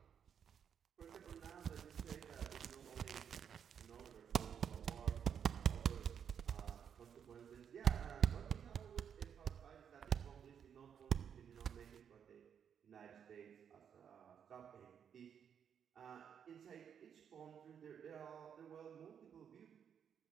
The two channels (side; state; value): left; quieter; 8.0 dB